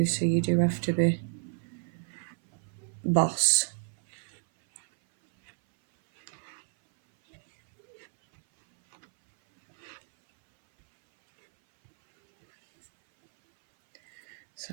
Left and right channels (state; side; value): silent; left; 58 dB below the other